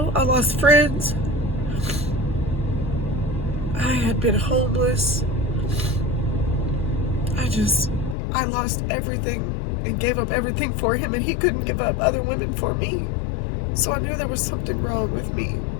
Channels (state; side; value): drops out; right; at 8.2 s